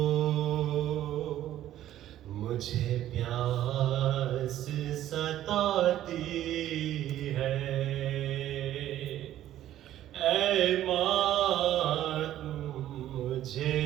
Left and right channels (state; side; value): quieter; left; 12.7 dB